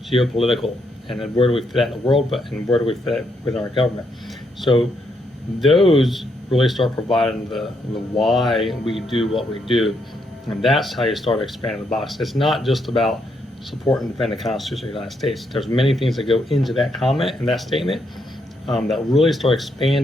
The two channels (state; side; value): normal; both; correlation 0.77